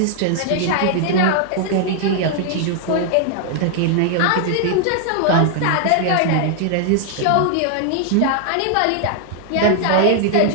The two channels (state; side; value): different; both; correlation 0.00